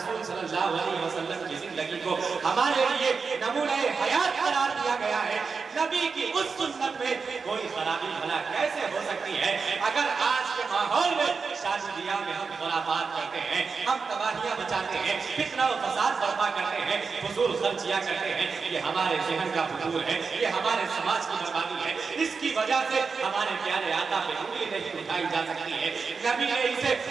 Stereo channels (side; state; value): left; quieter; 5.0 dB